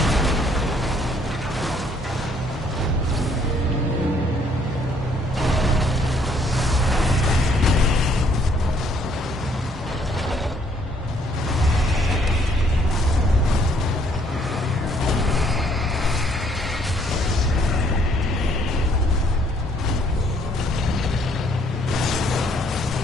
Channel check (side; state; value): both; normal; correlation 0.65